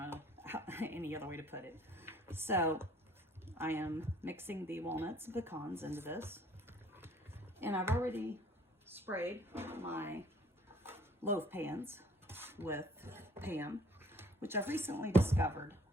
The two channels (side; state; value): both; normal; correlation 0.57